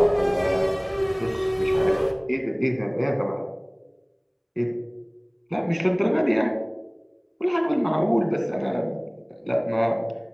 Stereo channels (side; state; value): both; identical; correlation 1.00